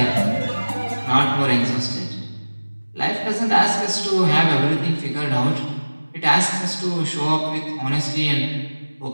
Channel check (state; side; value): inverted; both; correlation -1.00